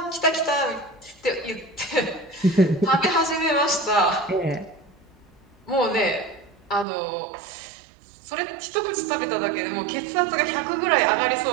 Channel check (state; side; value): drops out; left; at 6.9 s